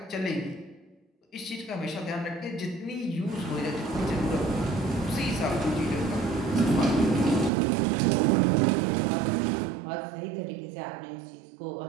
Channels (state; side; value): drops out; left; at 7.5 s